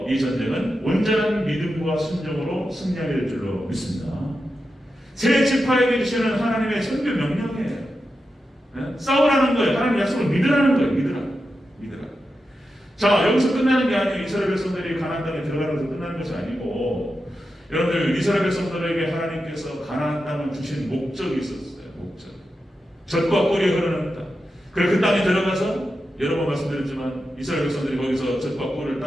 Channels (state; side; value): normal; both; correlation 0.89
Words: 이 전쟁은 온전한 믿음과 순종으로 승리하게 될 줄로 믿습니다. 새 지파에게 주시는 하나님의 선교 명령이에요. 싸우라는 거예요. 하나님 약속을 믿으라는 거예요. 믿으라. 자, 여기서 끝나는 게 아니에요. 이스라엘 백성들이 가나안 땅에 들어가는 것에서 끝나는 것이 아니고, 여러분들, 이스라엘 백성들에게 하나님께서 가나안 땅을 주신 목적이 있었어요. 목적. 젖과 꿀이 흐르는 땅. 그래서 그 땅에 들어가서 여러 번 말씀드렸지만 이스라엘 백성들이 거기서 젖과 꿀을